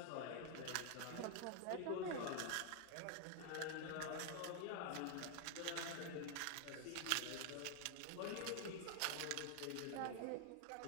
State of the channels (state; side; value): different; both; correlation 0.00